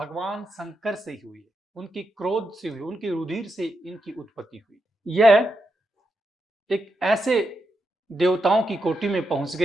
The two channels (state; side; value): normal; both; correlation 0.84